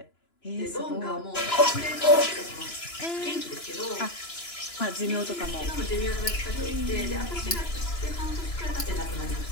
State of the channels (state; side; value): late; right; 2.9 ms